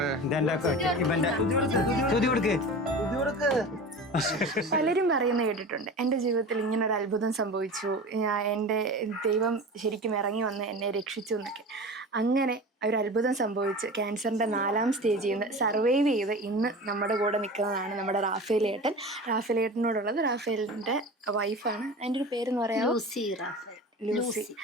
പലരും പറയുന്നത് കേട്ടിട്ടുണ്ട്, എൻ്റെ ജീവിതത്തിൽ ഇങ്ങനെ ഒരു അത്ഭുതം സംഭവിച്ചു, എൻ്റെ ദൈവം ശരിക്കും ഇറങ്ങി വന്ന് എന്നെ രക്ഷിച്ചു എന്നൊക്കെ. അങ്ങനെ ഒരു അത്ഭുതം സംഭവിച്ച് ക്യാൻസറിൻ്റെ 4ാം സ്റ്റേജിൽ നിന്ന് സർവൈവ് ചെയ്ത് ഇന്ന് നമ്മുടെ കൂടെ നിൽക്കുന്നതാണ് നമ്മുടെ റാഫേലിയേട്ടൻ. റാഫേലിയേട്ടനോടുള്ളത് റാഫേലിൻ്റെ വൈഫാണ്. അതിൻ്റെ ഒരു പേരെന്ന് പറയാം, ലൂസി.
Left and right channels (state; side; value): normal; both; correlation 0.33